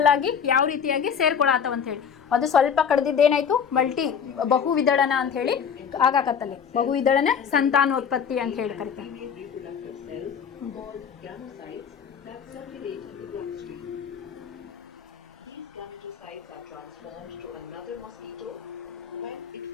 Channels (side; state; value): right; quieter; 7.2 dB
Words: ಆಗಿ ಯಾವ ರೀತಿಯಾಗಿ ಸೇರ್ಕೊಳತ್ತವ ಅಂತ ಹೇಳಿ. ಅದು ಸ್ವಲ್ಪ ಕಡ್ದಿದ್ದೇನಾಯ್ತು ಬಹು ವಿದಳನ ಅಂತ ಹೇಳಿ ಆಗಾಕತ್ತಲ್ಲಿ. ಬಹು ವಿದಳನ ಸಂತಾನೋತ್ಪತ್ತಿ ಅಂತ ಹೇಳಿ ಕರಿತಾರೆ. Female reproductive cells called gametophytes that circulate in the bloodstream. These gametophytes are transformed to another mosquito when it